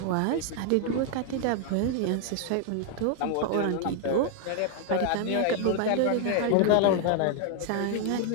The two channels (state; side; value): different; both; correlation 0.00